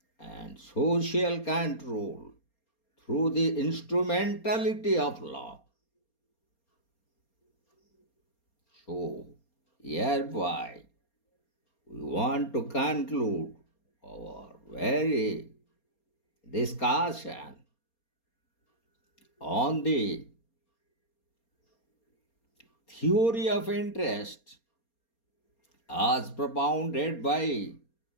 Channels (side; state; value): right; late; 4.3 ms